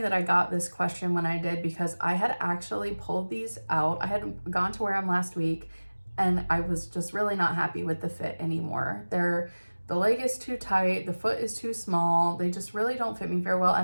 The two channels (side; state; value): both; inverted; correlation -1.00